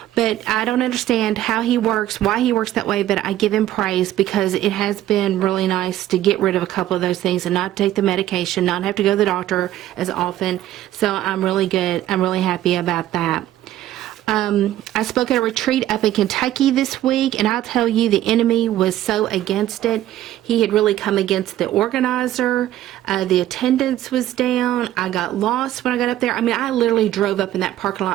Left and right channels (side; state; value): left; quieter; 13.4 dB